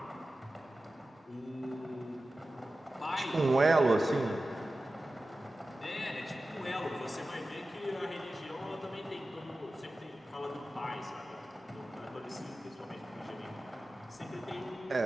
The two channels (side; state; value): both; normal; correlation 0.95